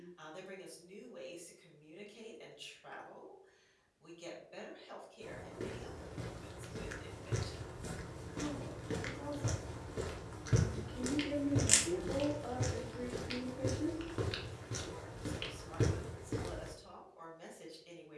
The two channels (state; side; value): identical; both; correlation 1.00